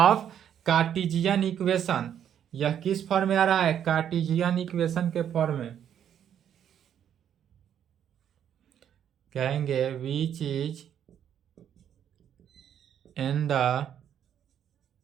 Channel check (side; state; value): left; quieter; 9.4 dB